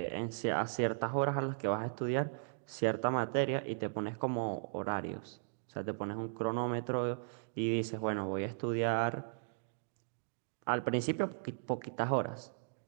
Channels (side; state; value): left; silent; digital silence